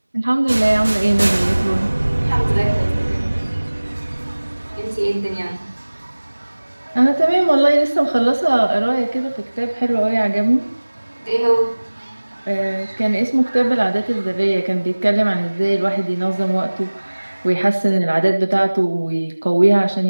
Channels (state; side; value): inverted; both; correlation -1.00